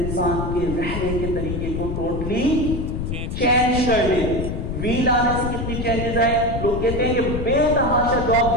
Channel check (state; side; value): noise; left; rumble, 4 dB below the sound